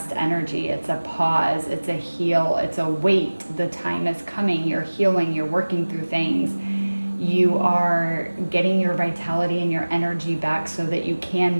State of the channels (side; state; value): both; inverted; correlation -1.00